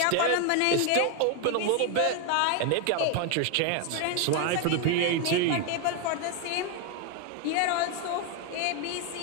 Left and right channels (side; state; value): both; different; correlation 0.01